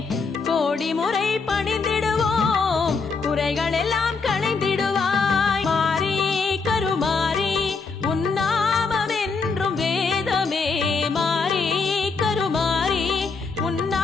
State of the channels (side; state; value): right; quieter; 4.7 dB